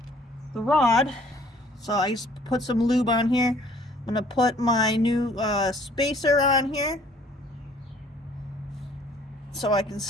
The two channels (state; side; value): normal; both; correlation 0.58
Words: the rod. So I just put some lube on here. I'm gonna put my new spacer on here so I can